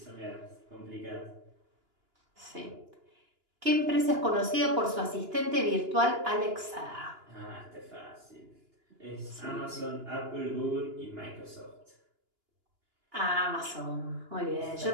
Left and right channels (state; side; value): late; left; 2.9 ms